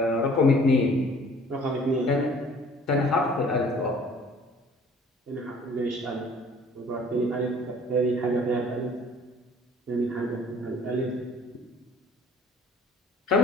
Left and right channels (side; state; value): both; normal; correlation 0.53